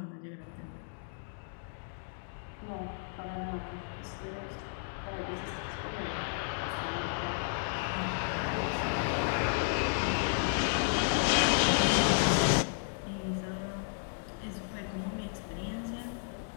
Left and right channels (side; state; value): right; silent; digital silence